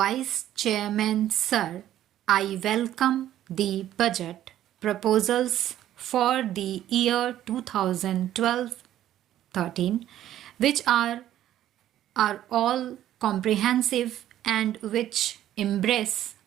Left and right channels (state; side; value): quieter; left; 12.3 dB